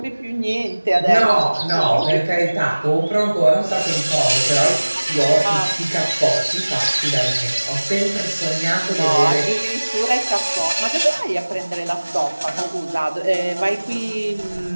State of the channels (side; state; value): both; inverted; correlation -1.00